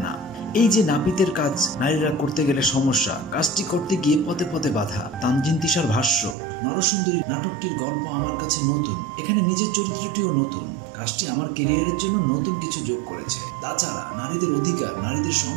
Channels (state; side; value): drops out; left; at 6.4 s